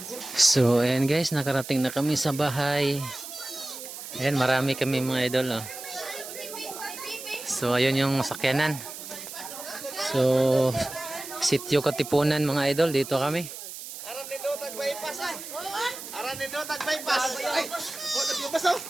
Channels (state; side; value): noise; right; hiss, 11 dB below the sound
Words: So ayan guys, nakarating na kami sa bahay. Ayan, marami kami mga idol oh. So ayun yung sakyanan. So sityo Katipunan mga idol, dito kami. Aran ni do tag bypass ay. Aran ni do tag bypass. Ay, nagbyabas oh.